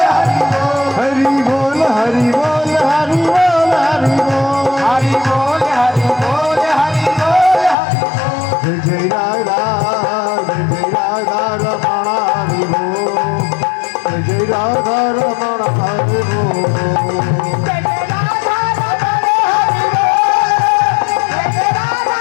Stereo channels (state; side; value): drops out; right; at 7.8 s